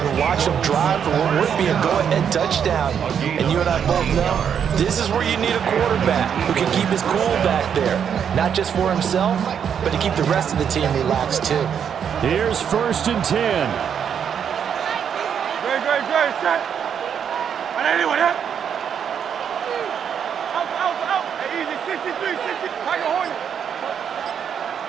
watch them drive for what would be a go-ahead touchdown. And you and I both know this is where you need a quarterback who can keep his cool back there. Not just for himself, but to keep the rest of the team relaxed too. Here's 1st and 10. Good, set. And anyone, yeah? Out. Hey, easy, 63, 60. Tiger Hornet.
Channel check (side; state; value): left; quieter; 8.0 dB